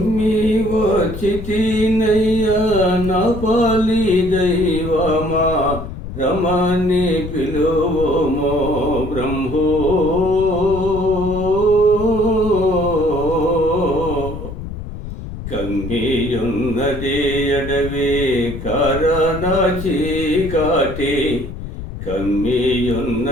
వచ్చితినయ్యా నా పాలి దైవమా, రమణి పిలువమో బ్రహ్మో. కమ్మియున్నది అడవి కారణ చీకాటి,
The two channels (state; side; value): noise; left; rumble, 9 dB below the sound